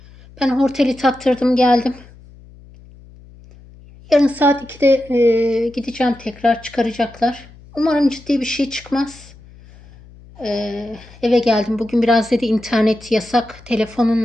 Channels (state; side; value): noise; left; hum, 23 dB below the sound